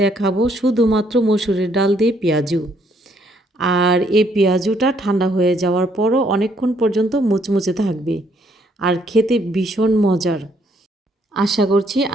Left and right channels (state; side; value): normal; both; correlation 0.69